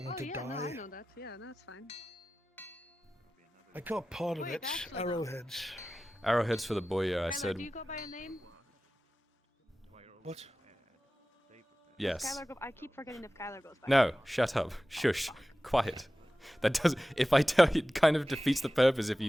want to No, die. I know that. Yeah, that's fine. I caught part of Wait, it. actually, Arrowheads. Arrowheads for the boy, I said. Do you go by a name? What? Yes. I keep forgetting if Kyler goes by. No, shut up. Shush. Quiet. That does. If I tell you, it kind of defeats the purpose if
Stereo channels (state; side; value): normal; both; correlation 0.95